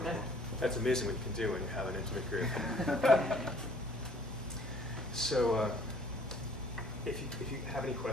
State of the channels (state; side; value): normal; both; correlation 0.56